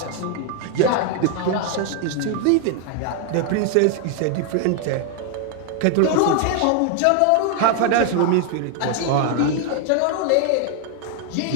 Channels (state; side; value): different; both; correlation 0.00